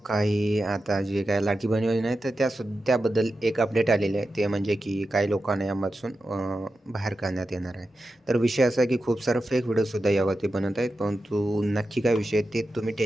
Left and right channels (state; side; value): normal; both; correlation 0.91